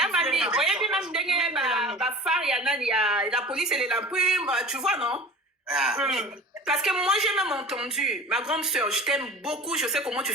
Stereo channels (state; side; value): normal; both; correlation 0.38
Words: oyebi même ndenge bafare ya nani ya la police elela mpi tu vois non parce que moi j'ai même entendu, ma grande sœur, je t'aime beaucoup, je sais comment tu